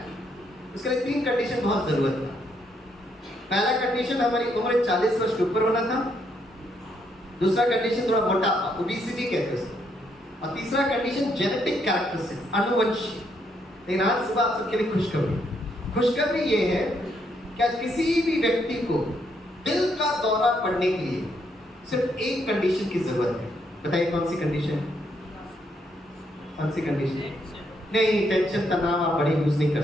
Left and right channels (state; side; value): normal; both; correlation 0.74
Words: उसके लिए 3 कंडीशन बहुत जरूरत था। पहला कंडीशन हमारी उम्र 40 वर्ष के ऊपर होना था। दूसरा कंडीशन थोड़ा मोटापा, ओबेसिटी कहते हैं उसको। और तीसरा कंडीशन जेनेटिक कैरेक्टरिस्टिक्स, अनुवंशिक। लेकिन आज सुबह आप सबके लिए खुशखबरी ये है कि आज किसी भी व्यक्ति को दिल का दौरा पड़ने के लिए सिर्फ एक कंडीशन की जरूरत है। बताइए कौन सी कंडीशन? कौन सी कंडीशन? नहीं, टेंशन तनाव आप बड़े यूज नहीं कर